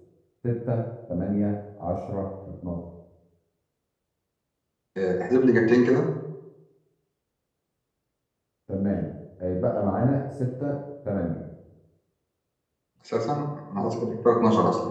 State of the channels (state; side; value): identical; both; correlation 1.00